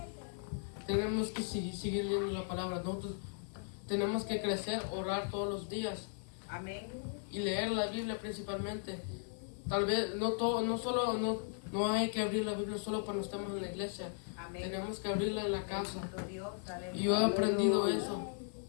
tenemos que seguir leyendo la palabra. Nosotros tenemos que crecer, orar todos los días Amén. y leer la Biblia principalmente. Tal vez no hay que abrir la Biblia solo cuando estamos en la iglesia. Amén. Tenemos que abrirla en la casa. Bendito Dios. Y yo he Aleluya. aprendido eso.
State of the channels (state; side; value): silent; right; digital silence